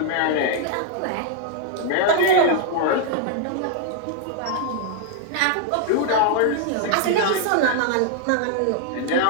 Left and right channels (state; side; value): different; both; correlation -0.01